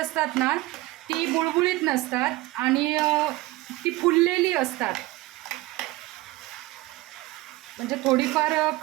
ना ती बुळबुळीत नसतात आणि ती फुललेली असतात. म्हणजे थोडीफार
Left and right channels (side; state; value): left; quieter; 19.4 dB